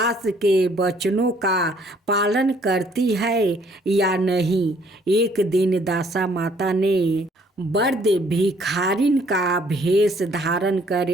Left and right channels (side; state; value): both; normal; correlation 0.63